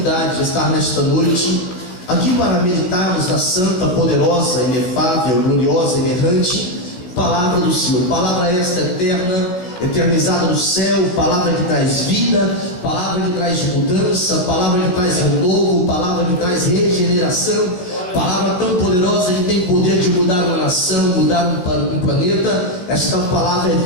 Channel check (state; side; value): late; right; 16 ms